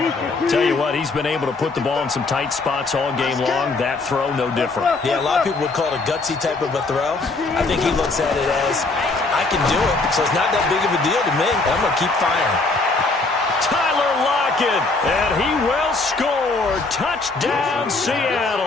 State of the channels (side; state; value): right; quieter; 3.6 dB